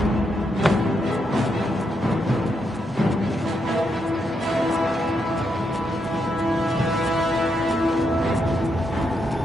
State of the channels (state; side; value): normal; both; correlation 0.81